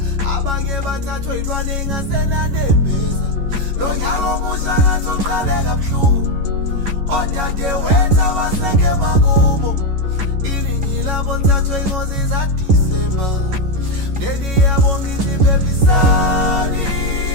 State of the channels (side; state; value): left; late; 11 ms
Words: abanye bathathwe ilwane engasenanembeza. Lo nyaka omusha ngathi uqale kabuhlungu, odade wenza baseke makubo. Iningi labo lithathwe ingozi zaDisemba, mndeni yabo ngithi phephisani,